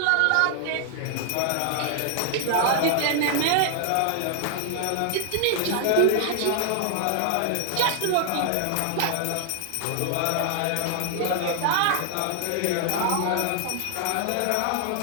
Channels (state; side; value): different; both; correlation 0.00